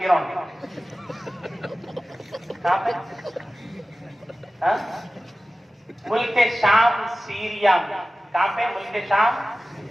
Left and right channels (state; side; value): normal; both; correlation 0.96